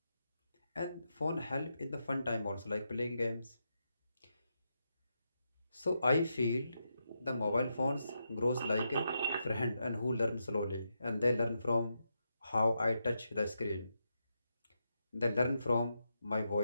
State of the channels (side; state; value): both; inverted; correlation -0.84